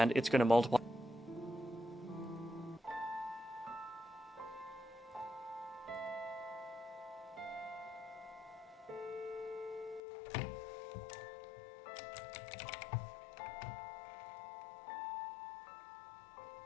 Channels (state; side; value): drops out; right; at 10.0 s